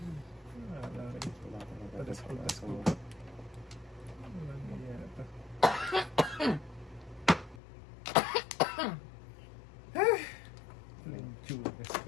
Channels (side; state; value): right; drops out; at 7.6 s